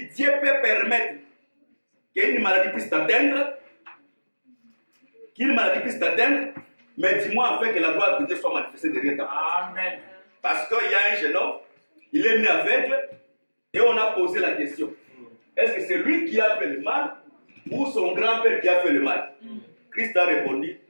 que Dieu peut permettre qu'une maladie puisse t'atteindre. Mais dis-moi afin que la gloire de Dieu soit manifestée derrière ta part. Amen. Parce qu'il y a un jeune homme, il est né aveugle, et on a posé la question. Est-ce que c'est lui qui a fait le mal ou son grand-père qui a fait le mal? Christ a répondu,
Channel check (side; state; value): both; inverted; correlation -1.00